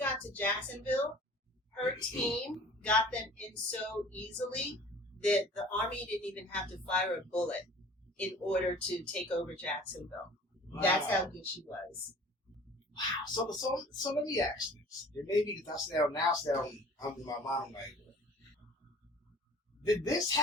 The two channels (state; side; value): normal; both; correlation 0.47